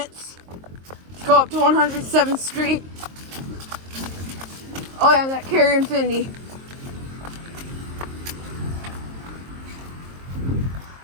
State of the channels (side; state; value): left; late; 23 ms